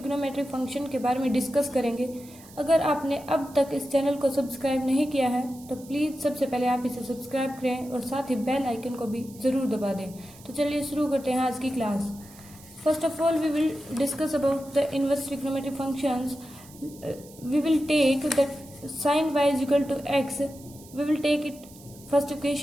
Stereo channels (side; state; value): right; noise; hiss, 21 dB below the sound